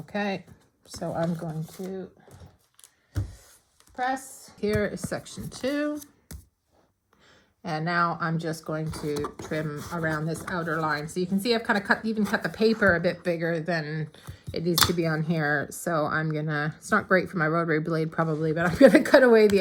So I'm going to press. Here is section 2. And now I'm just going to trim around this outer line. So you can see I've kind of even cut the paper a bit bigger than it needs to be on here. So I'm gonna, it's not great for my rotary blade probably, but I'm gonna cut away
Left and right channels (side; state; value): both; identical; correlation 1.00